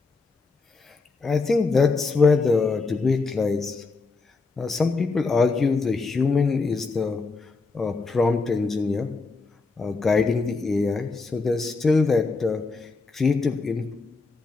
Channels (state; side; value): quieter; right; 4.1 dB